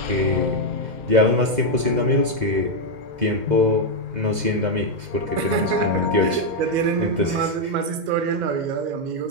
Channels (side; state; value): left; late; 2.0 ms